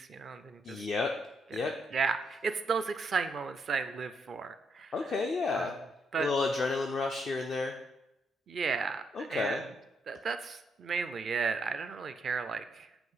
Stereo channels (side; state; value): both; normal; correlation 0.76